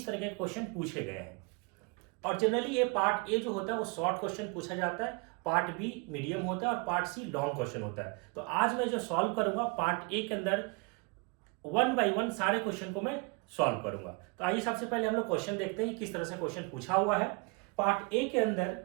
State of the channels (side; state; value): left; quieter; 31.2 dB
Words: तरह के क्वेश्चन पूछे गए हैं। और जनरली ये पार्ट ए जो होता है वो शॉर्ट क्वेश्चन पूछा जाता है, पार्ट बी मीडियम होता है और पार्ट सी लॉन्ग क्वेश्चन होता है। तो आज मैं जो सॉल्व करूंगा पार्ट ए के अंदर 1 बाय 1 सारे क्वेश्चन को मैं सॉल्व करूंगा। तो आइए सबसे पहले हम लोग क्वेश्चन देखते हैं कि किस तरह से क्वेश्चन पूछा हुआ है। पार्ट ए के अंदर